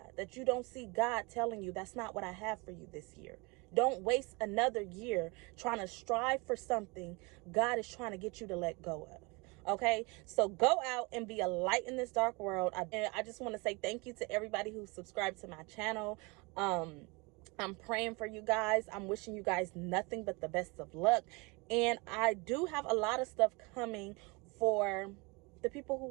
that you don't see God telling you that's not what I have for you this year. Don't waste another year trying to strive for something God is trying to get you to let go of. Okay, so go out and be a light in this dark world. I just want to say thank you to everybody who subscribed to my channel. I'm praying for you guys. I'm wishing you guys nothing but the best of luck. And I do have a lot of stuff coming for the people who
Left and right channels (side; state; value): left; quieter; 27.9 dB